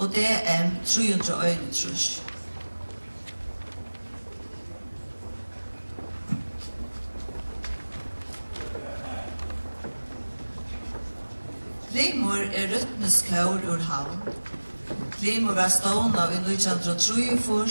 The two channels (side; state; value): both; inverted; correlation -1.00